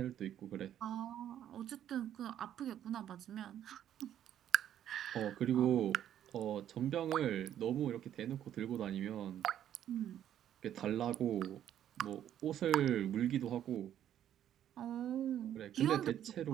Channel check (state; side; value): quieter; left; 10.8 dB